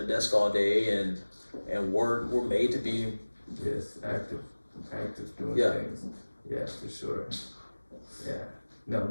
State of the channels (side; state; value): both; inverted; correlation -1.00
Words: a desk all day and work. We're made to be active doing things. Yeah, for sure. Yeah. No,